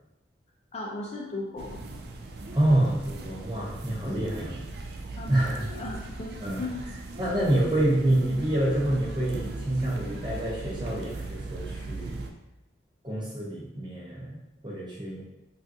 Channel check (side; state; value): both; normal; correlation 0.85